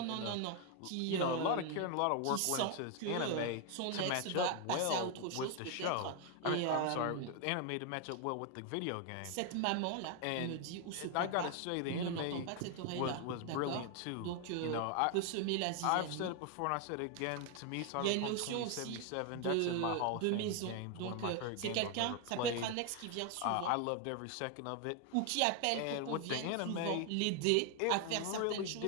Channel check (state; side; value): different; both; correlation 0.00